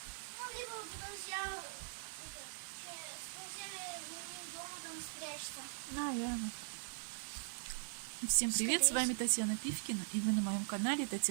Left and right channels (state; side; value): silent; left; digital silence